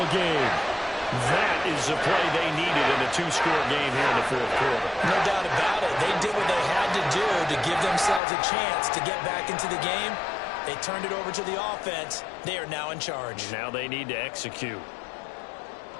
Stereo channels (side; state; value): right; drops out; at 8.2 s